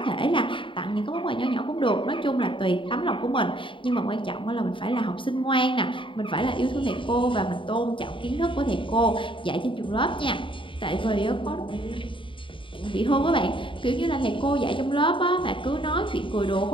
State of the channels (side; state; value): right; late; 0.25 ms